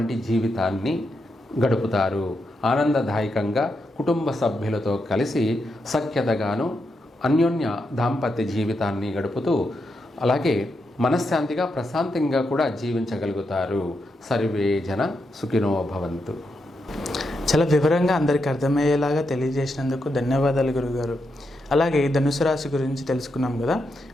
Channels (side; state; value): both; normal; correlation 0.83